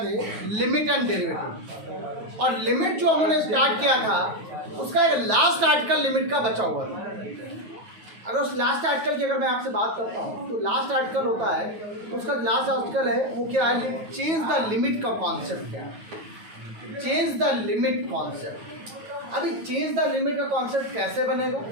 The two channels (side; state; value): left; late; 9.2 ms